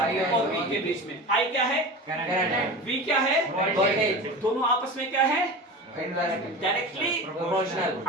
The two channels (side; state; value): both; normal; correlation 0.30